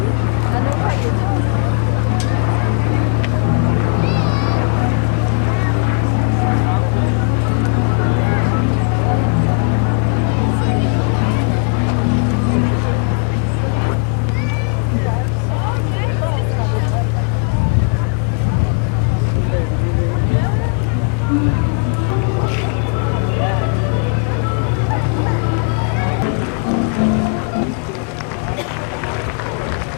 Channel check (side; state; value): right; quieter; 37.8 dB